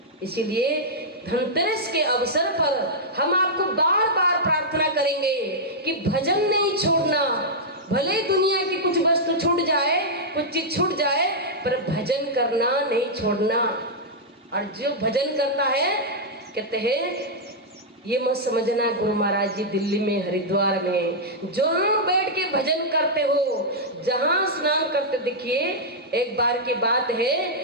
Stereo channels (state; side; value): normal; both; correlation -0.07